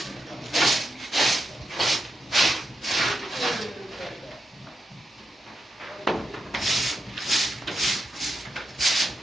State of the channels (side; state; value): both; normal; correlation 0.86